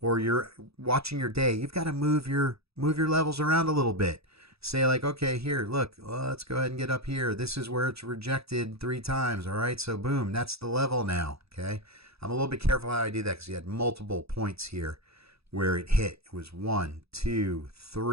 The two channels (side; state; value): left; late; 0.77 ms